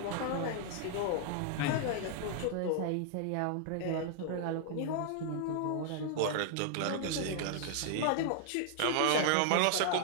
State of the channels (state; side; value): different; both; correlation 0.00